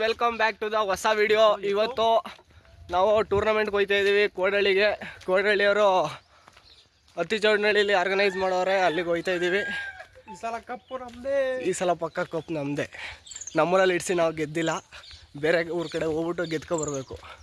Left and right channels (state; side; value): identical; both; correlation 1.00